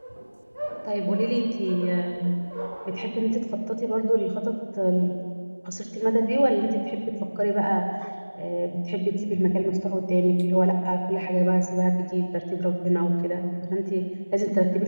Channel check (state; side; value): inverted; both; correlation -1.00